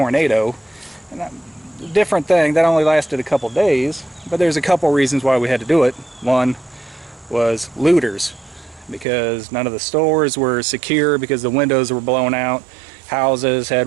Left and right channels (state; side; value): drops out; left; at 9.1 s